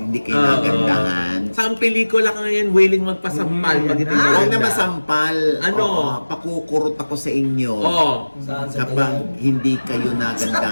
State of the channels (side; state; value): both; inverted; correlation -1.00